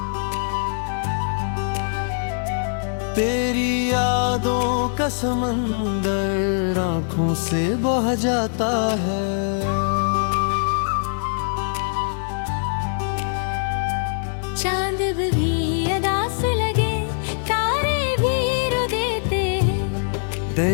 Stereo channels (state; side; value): silent; right; digital silence